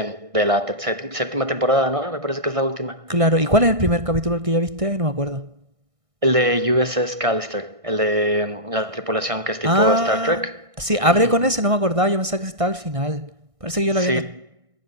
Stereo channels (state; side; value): late; left; 1.6 ms